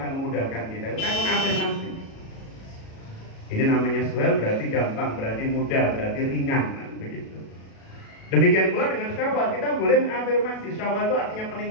memudahkan kita. Itu kan mengafirmasi. Ini namanya Suhail, berarti gampang, berarti mudah, berarti ringan, begitu. Demikian pula dengan Syawal, kita boleh mengafirmasi. Syawal itu artinya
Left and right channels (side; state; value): right; late; 37 ms